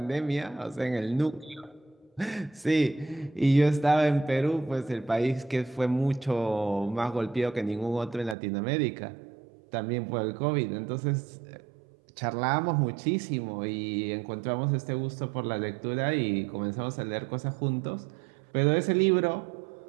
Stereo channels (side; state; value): left; drops out; at 8.3 s